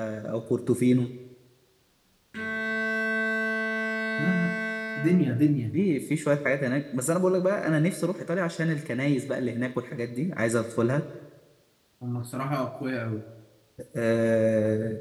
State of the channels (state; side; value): identical; both; correlation 1.00